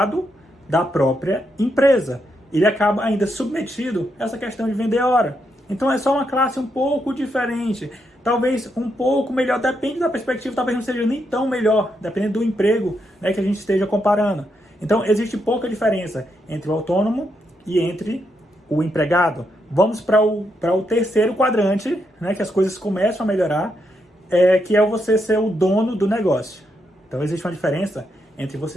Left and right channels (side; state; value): both; normal; correlation 0.80